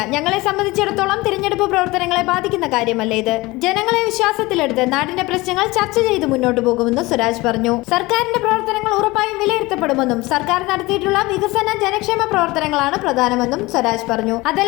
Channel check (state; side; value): quieter; right; 21.3 dB